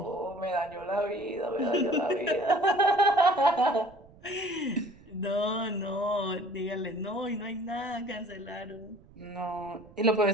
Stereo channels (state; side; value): noise; right; rumble, 25 dB below the sound